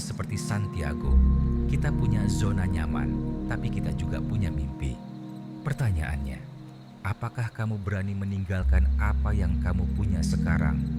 seperti Santiago. Kita punya zona nyaman, tapi kita juga punya mimpi. Pertanyaannya, apakah kamu berani meninggalkan apa yang kamu punya sekarang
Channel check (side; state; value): both; identical; correlation 1.00